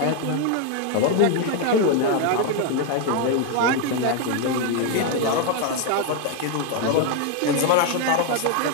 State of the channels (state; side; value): different; both; correlation 0.01